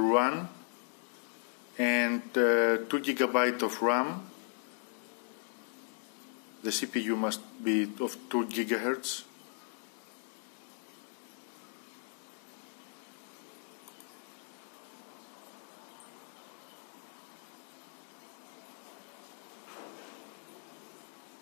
run, and 2 GB of RAM. The CPU must be of 2 GHz.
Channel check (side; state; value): right; silent; 53 dB below the other